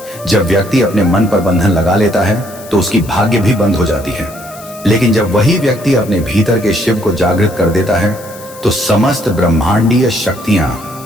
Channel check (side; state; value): left; noise; hiss, 19 dB below the sound